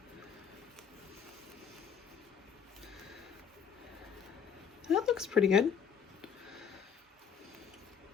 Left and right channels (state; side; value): quieter; right; 7.3 dB